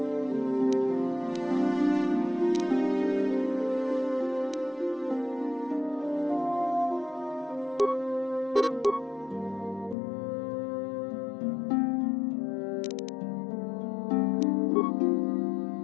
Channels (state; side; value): drops out; right; at 10.0 s